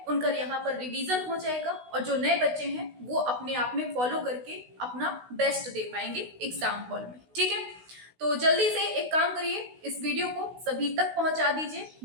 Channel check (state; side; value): late; left; 16 ms